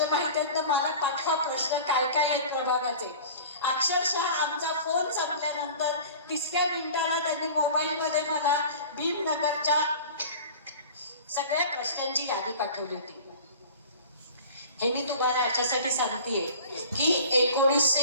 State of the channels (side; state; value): both; inverted; correlation -0.40